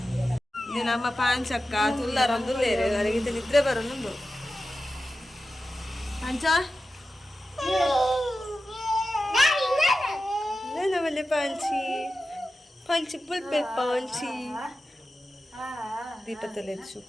ಇದು ನಮ್ಮ ಪಾಂಚಕ್ಕ ತುಲ್ಲಾರೊಂದು ಬೇರೆ ಅವರಿಗೆ ನಿದ್ರೆ ಬರೋನುಂಡು ಪಾಂಚ ನವಲೆ ಪಾಂಚಿ ಪಾಂಚಿ ಪುಲ್ಪೆ ಪಾಂಚಿ ದೀಪತ್ತಲೆ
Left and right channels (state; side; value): normal; both; correlation 0.93